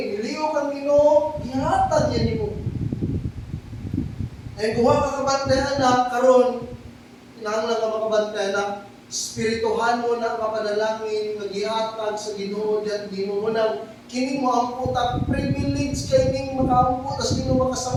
nilihok ang Ginoo, nihatag niya nimo. And kung ka kabantay, anak, karon, kinahanglan ka makabantay, anak, spirituhan mo na kapanalangin, mag-ihatag sa Ginoo, diyan Ginoo mo na, kini mo ang puta, privilege kay ning makaampo, tas Ginoo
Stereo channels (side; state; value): both; identical; correlation 1.00